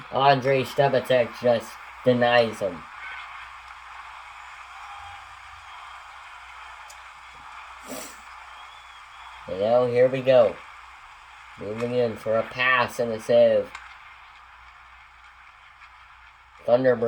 Andrei Stebatek just denies him. And now here we go. Moving in for a pass and a save.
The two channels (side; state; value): both; identical; correlation 1.00